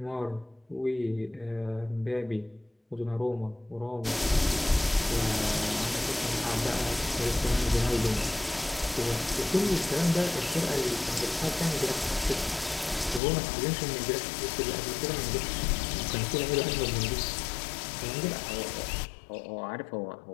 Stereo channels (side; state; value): right; drops out; at 13.2 s